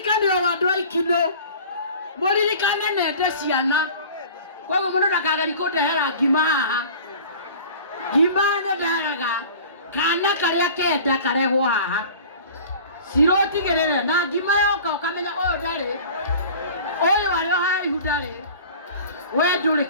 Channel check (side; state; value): both; inverted; correlation -0.43